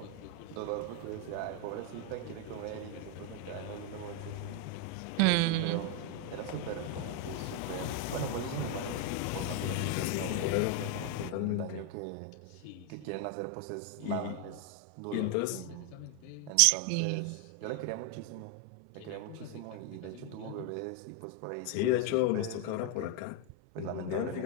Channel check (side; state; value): both; different; correlation 0.01